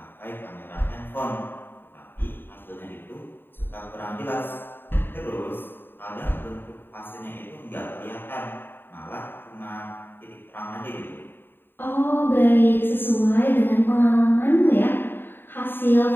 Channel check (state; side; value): late; right; 0.098 ms